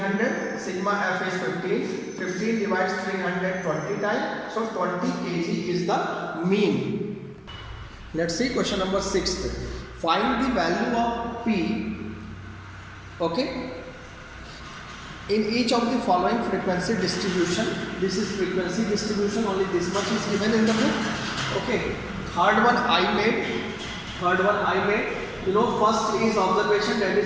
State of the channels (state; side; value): identical; both; correlation 1.00